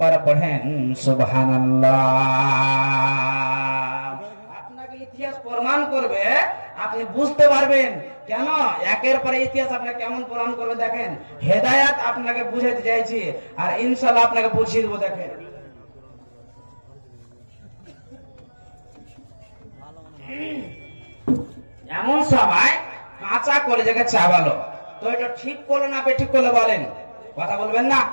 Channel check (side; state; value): both; inverted; correlation -1.00